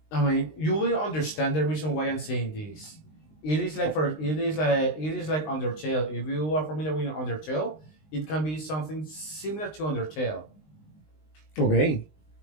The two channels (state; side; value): late; right; 19 ms